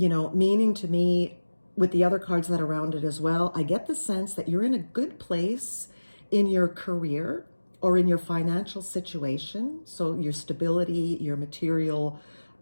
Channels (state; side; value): inverted; both; correlation -1.00